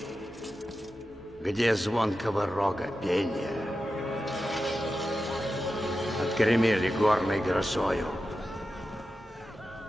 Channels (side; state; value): both; normal; correlation 0.92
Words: Где звонкого рога пения? Отгремели горной грозою,